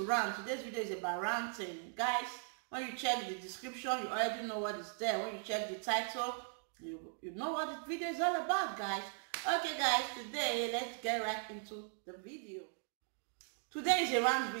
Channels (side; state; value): left; silent; 52 dB below the other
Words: rant. Today's video is about ranting, guys. When you check the description, you already know what is there. When you check the title, you know what the video is all about, guys. Okay, guys, today let's get right into the video. Today is a rant